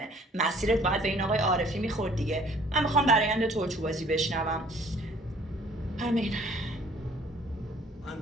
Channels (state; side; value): normal; both; correlation 0.56